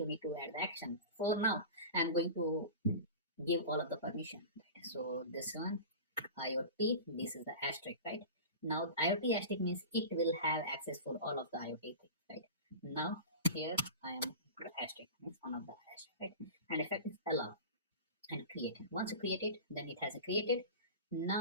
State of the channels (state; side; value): inverted; both; correlation -0.32